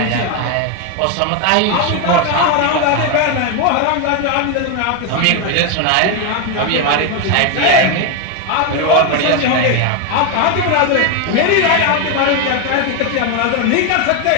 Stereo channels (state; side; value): different; both; correlation 0.01